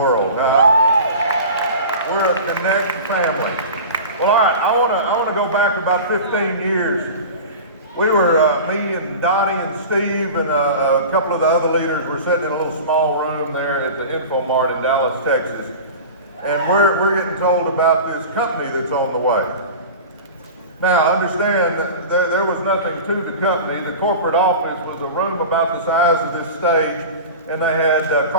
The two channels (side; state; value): both; inverted; correlation -0.34